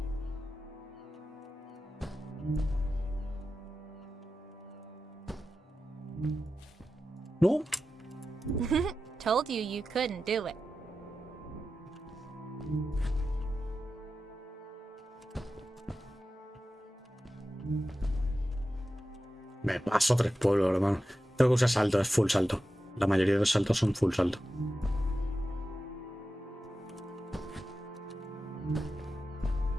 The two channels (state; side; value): normal; both; correlation 0.92